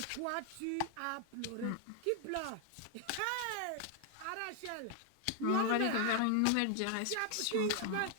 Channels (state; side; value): different; both; correlation 0.00